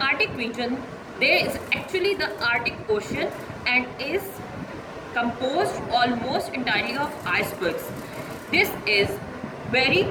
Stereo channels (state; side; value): identical; both; correlation 1.00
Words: Arctic region, there is actually the Arctic Ocean and is composed almost entirely of icebergs. This is very